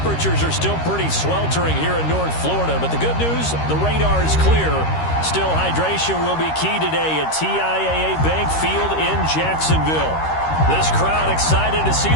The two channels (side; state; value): right; late; 13 ms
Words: are still pretty sweltering here in North Florida. But the good news, the radar is clear. Still, hydration will be key today at TIAA Bank Field in Jacksonville. This crowd excited to see